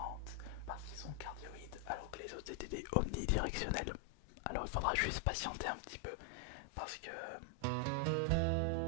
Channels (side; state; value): both; different; correlation 0.00